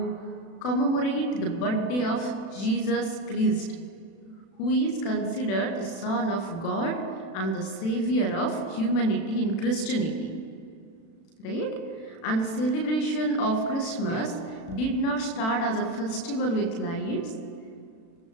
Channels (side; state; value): right; late; 36 ms